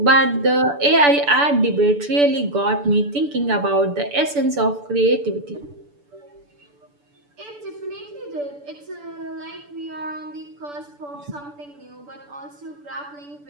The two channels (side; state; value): left; late; 6.9 ms